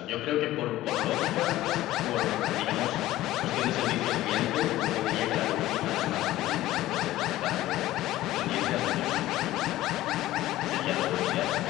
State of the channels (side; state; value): right; quieter; 15.5 dB